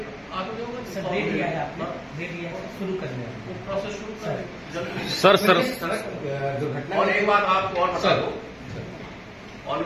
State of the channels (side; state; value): both; identical; correlation 1.00